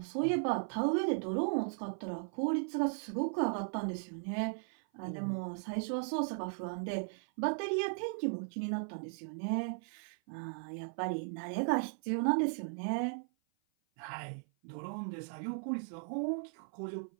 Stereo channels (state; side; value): silent; left; 53 dB below the other